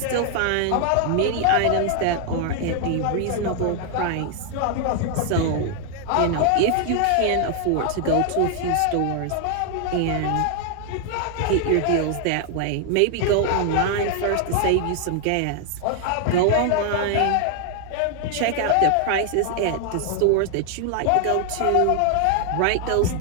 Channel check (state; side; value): different; both; correlation 0.00